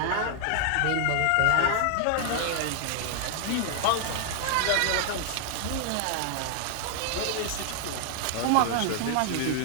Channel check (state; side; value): different; both; correlation 0.00